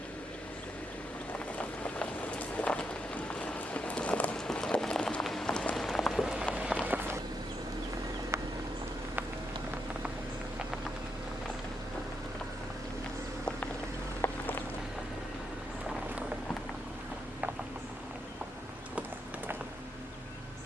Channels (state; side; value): normal; both; correlation 0.81